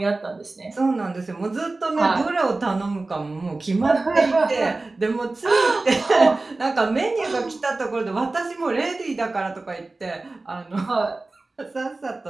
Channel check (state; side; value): quieter; left; 3.2 dB